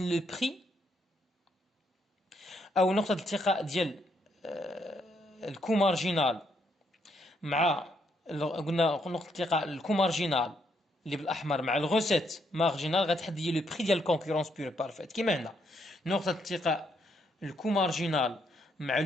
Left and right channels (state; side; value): normal; both; correlation 0.74